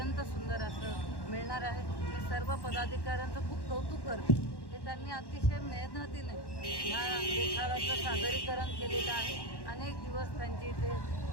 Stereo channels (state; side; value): late; right; 1.1 ms